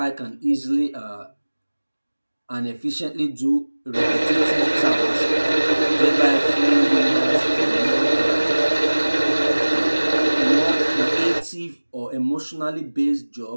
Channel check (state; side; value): inverted; both; correlation -1.00